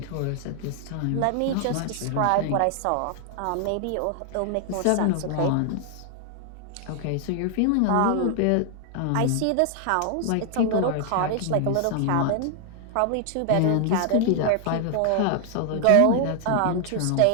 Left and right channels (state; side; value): different; both; correlation 0.00